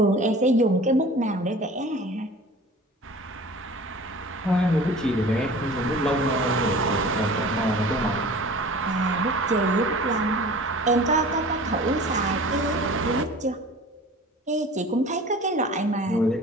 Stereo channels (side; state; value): both; normal; correlation 0.42